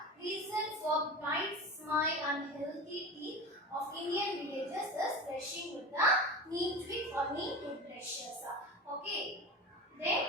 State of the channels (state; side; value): normal; both; correlation 0.30